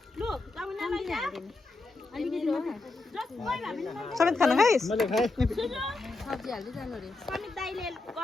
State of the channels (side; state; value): right; quieter; 3.4 dB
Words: समेत खाना खाइस् मैले खाए